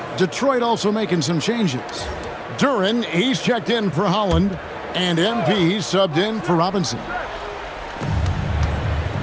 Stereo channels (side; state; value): both; identical; correlation 1.00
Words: Detroit also making some changes. Duren, he's checked in for Holland. And MP subbed in for Robinson.